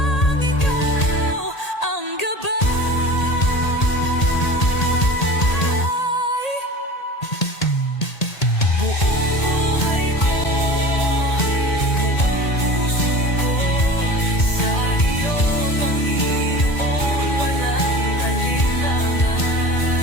ikaw ang gabay. Buong buhay ko, buong puso ko, sa iyo, Panginoon, walang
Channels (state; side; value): late; right; 1.8 ms